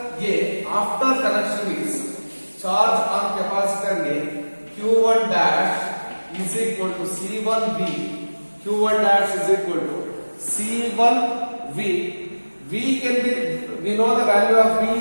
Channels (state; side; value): inverted; both; correlation -1.00